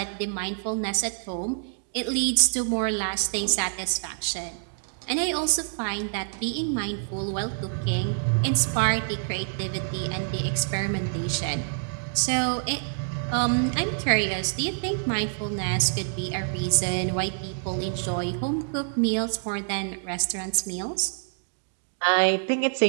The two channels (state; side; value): silent; left; digital silence